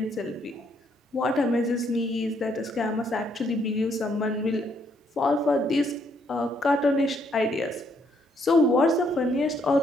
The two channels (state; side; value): normal; both; correlation 0.71